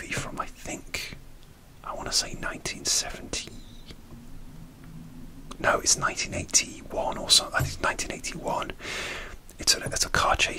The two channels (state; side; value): identical; both; correlation 1.00